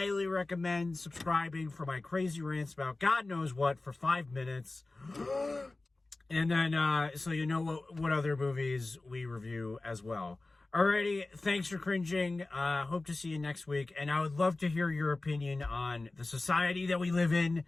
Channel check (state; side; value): quieter; right; 3.2 dB